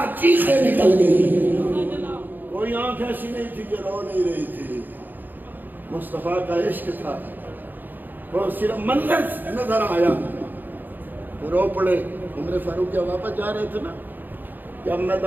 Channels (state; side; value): late; left; 0.089 ms